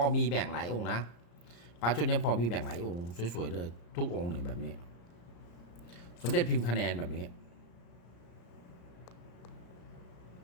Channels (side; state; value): right; late; 34 ms